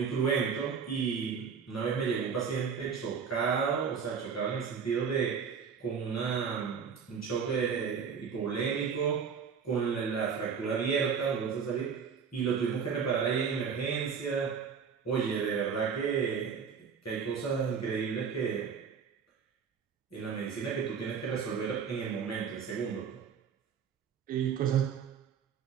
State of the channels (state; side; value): quieter; left; 6.5 dB